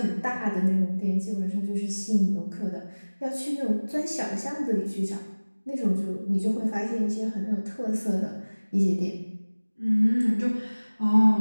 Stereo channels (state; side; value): inverted; both; correlation -1.00